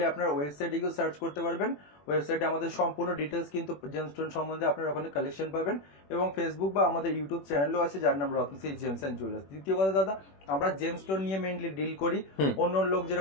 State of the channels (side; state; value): right; late; 21 ms